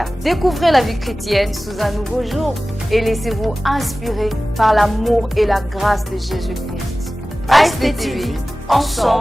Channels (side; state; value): both; normal; correlation 0.97